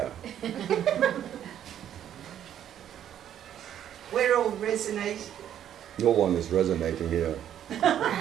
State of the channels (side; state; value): left; quieter; 10.4 dB